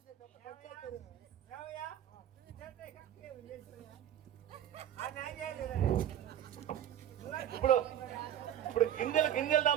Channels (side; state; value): left; quieter; 10.8 dB